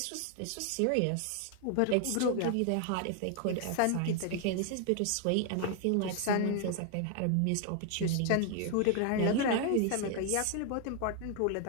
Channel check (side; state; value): both; different; correlation 0.00